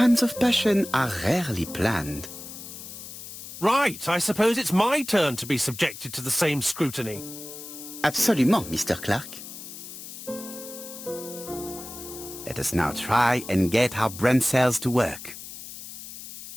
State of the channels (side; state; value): left; noise; hiss, 12 dB below the sound